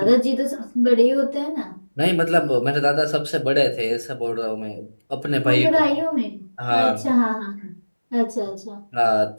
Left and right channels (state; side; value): inverted; both; correlation -1.00